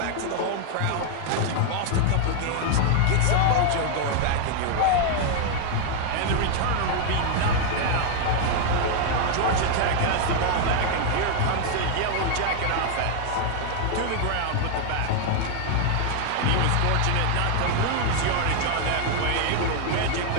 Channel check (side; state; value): both; different; correlation 0.00